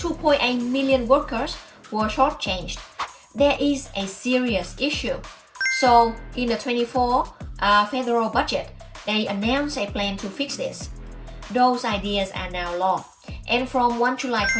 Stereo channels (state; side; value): identical; both; correlation 1.00